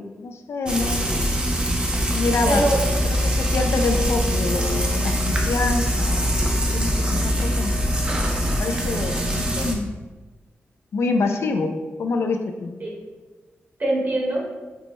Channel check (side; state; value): both; normal; correlation 0.74